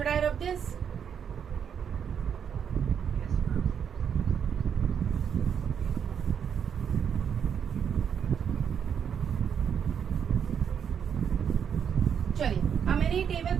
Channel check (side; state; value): left; quieter; 7.8 dB